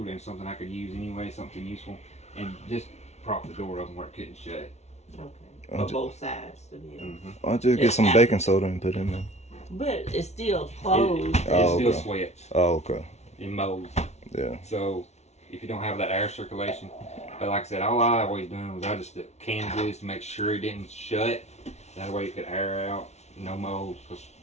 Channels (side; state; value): right; late; 0.32 ms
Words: and something I could use anyway, something useful, and just prop the door open where it couldn't shut. Okay. On both sides to be able. I'll just get some baking soda and put it in there. But it's still closed. It still okay. sweats. Oh, okay. It molds. Yeah. So if you don't have that air circulation, but like I said, all I always done was I just canned this to make sure it didn't shut. That way it could air out, no mold, because